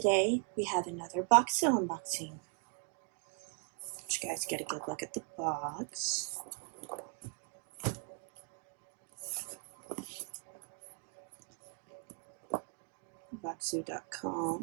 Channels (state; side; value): quieter; left; 37.4 dB